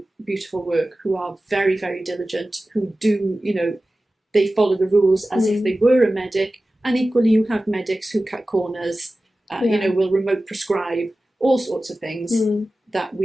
beautiful work, who are very, very diligent, who do, you know, they follow the rules as if they were a medic. And equally, you have medics who cut corners, you know, will remote prescribe, all sorts of things that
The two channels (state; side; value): normal; both; correlation 0.95